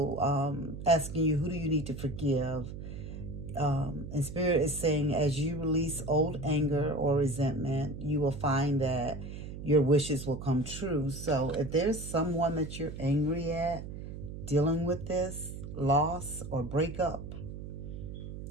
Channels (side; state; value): right; noise; hum, 9 dB below the sound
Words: asking you, who do you need to forgive? And Spirit is saying, as you release old anger or resentment, you will find that your wishes will come true. So if there's someone that you're angry at dealing with this loss or breakup,